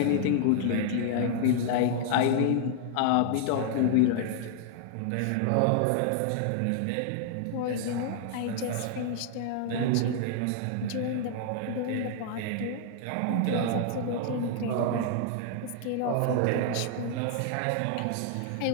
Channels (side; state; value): both; different; correlation 0.00